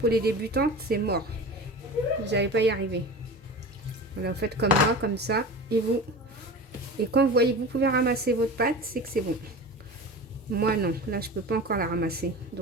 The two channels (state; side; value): normal; both; correlation 0.33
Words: les débutantes, c'est mort. Vous n'allez pas y arriver. Voilà, vous faites comme moi, comme ça. Et quand vous voyez que vous pouvez ramasser votre pâte, c'est que c'est bon. Moi, non. Là, je peux pas encore la ramasser.